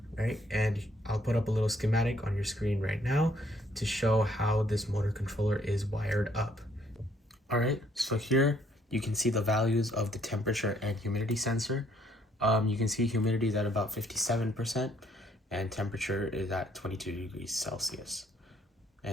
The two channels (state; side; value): normal; both; correlation 0.66